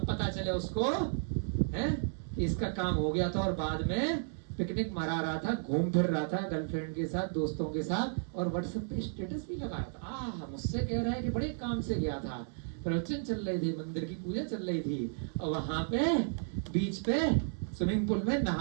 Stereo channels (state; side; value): silent; left; digital silence